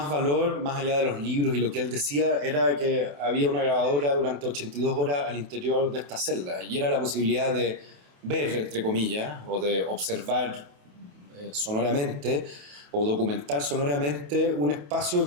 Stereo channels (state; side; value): late; left; 28 ms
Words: valor, más allá de los libros y lo que él decía, era que había una grabadora durante 82 horas al interior de esta celda, y era la posibilidad de ver, entre comillas, o de observar sonoramente o documentar sonoramente un espacio